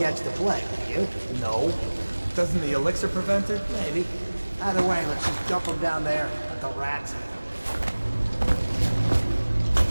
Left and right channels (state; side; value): inverted; both; correlation -1.00